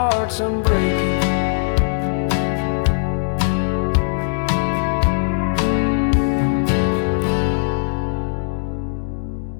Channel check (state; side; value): silent; right; digital silence